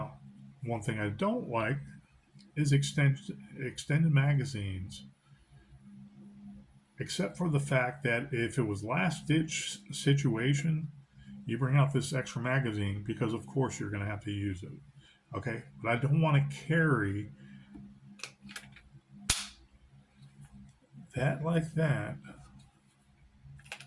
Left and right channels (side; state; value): both; identical; correlation 1.00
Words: one thing I don't like is extended magazines. Except for the fact that if it was last ditch situation, you bring out this extra magazine because of course you're going to have to use it. Okay, but I don't want to carry that like that.